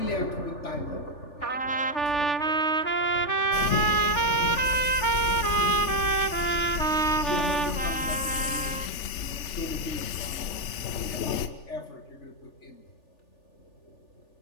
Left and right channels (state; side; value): late; right; 3.4 ms